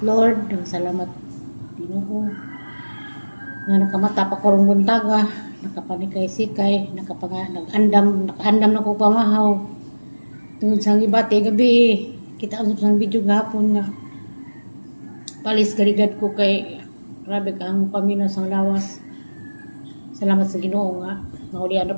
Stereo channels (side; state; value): both; inverted; correlation -1.00